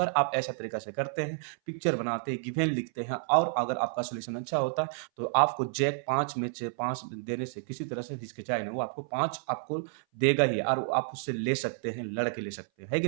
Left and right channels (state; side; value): silent; left; 57 dB below the other